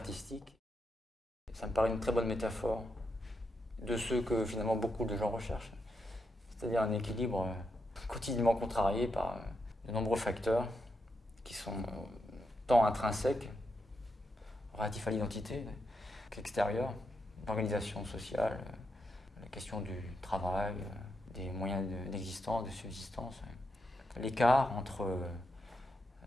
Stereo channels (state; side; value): normal; both; correlation 0.84